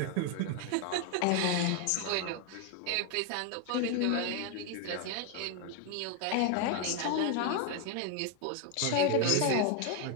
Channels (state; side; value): different; both; correlation 0.01